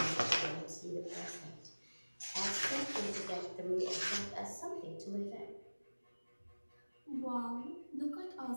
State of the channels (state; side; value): inverted; both; correlation -1.00